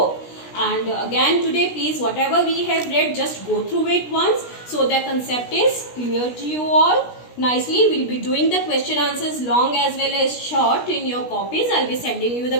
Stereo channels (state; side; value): late; right; 16 ms